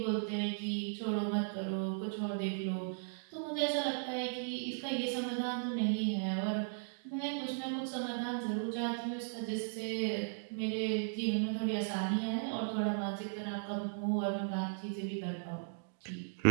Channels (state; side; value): silent; left; digital silence